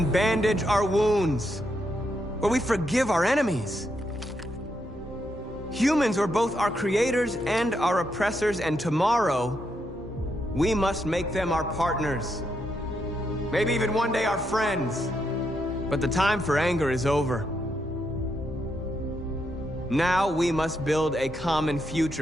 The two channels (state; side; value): normal; both; correlation 0.80